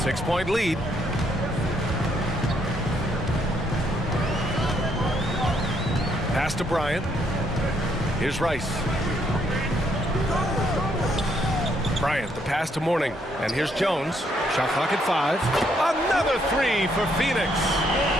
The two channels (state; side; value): normal; both; correlation 0.72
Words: 6-point lead. Pass to Bryant. Here's Rice. Bryant, the pass to Mourning. And here's Jones. Shot clock at 5. Another 3 for Phoenix.